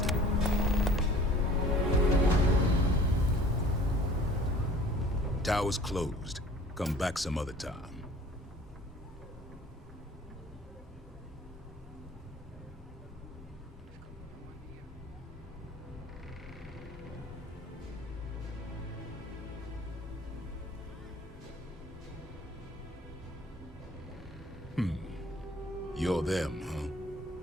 Tower's closed. Come back some other time. You're them,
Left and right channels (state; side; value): normal; both; correlation 0.49